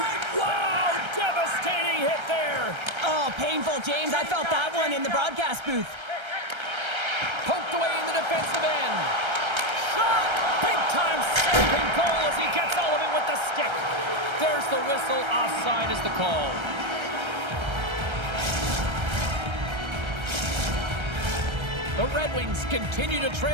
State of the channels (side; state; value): left; late; 1.3 ms